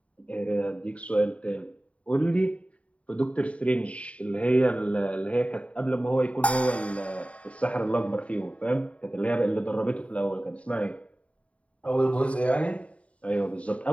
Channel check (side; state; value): right; late; 0.064 ms